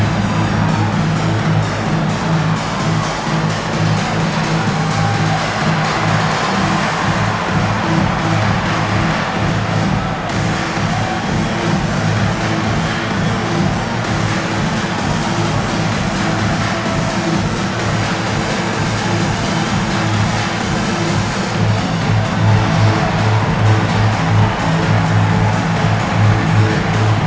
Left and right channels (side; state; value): both; identical; correlation 1.00